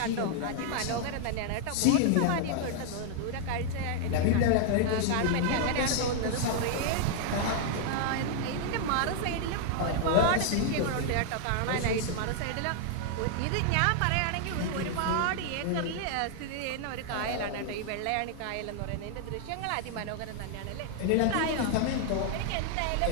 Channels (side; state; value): both; different; correlation 0.00